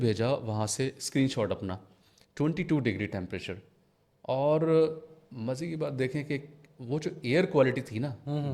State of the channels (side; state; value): both; identical; correlation 1.00